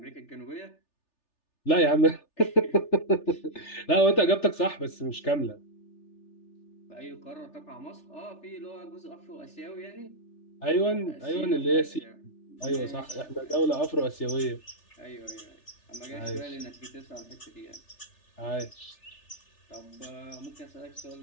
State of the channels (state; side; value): late; right; 3.3 ms